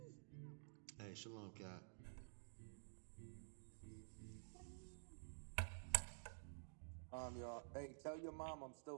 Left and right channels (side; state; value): left; silent; digital silence